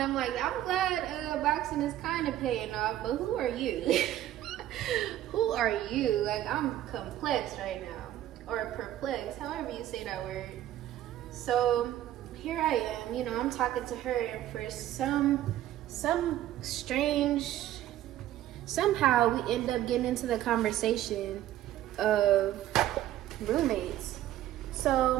like, I'm glad boxing is kind of paying off, but who are you? Who are you? Like, I'm complex right now, or perplexed, however you say that word. So here I am, you know, I'm talking to her, and for some strange, somehow we end up getting into the conversation of roommates.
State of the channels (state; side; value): quieter; left; 13.1 dB